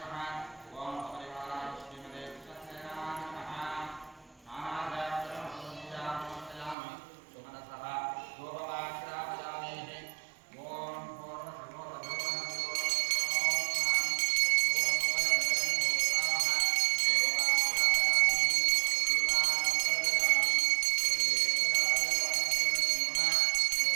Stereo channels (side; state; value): left; drops out; at 6.8 s